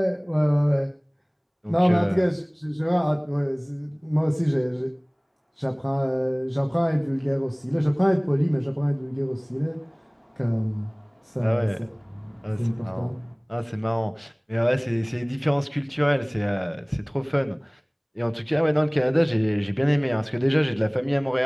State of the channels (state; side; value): identical; both; correlation 1.00